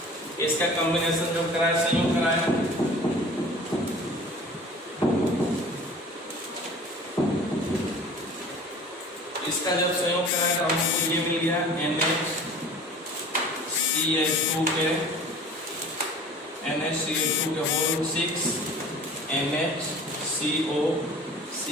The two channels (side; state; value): both; normal; correlation 0.44